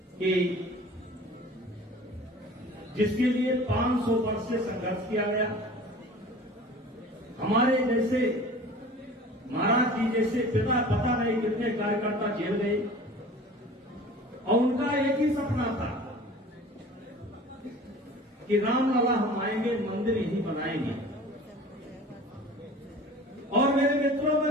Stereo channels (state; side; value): normal; both; correlation 0.42